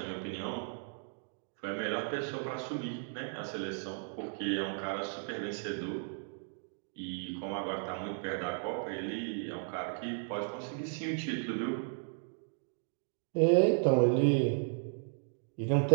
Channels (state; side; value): silent; left; 55 dB below the other